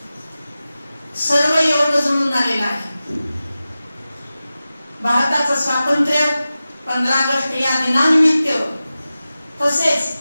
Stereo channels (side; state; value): both; inverted; correlation -0.95